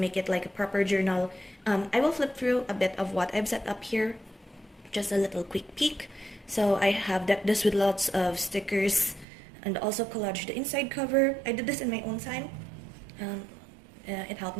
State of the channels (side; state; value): left; drops out; at 9.2 s